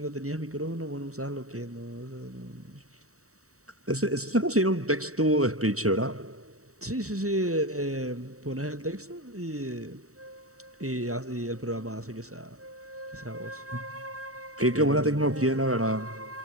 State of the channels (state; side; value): late; left; 0.65 ms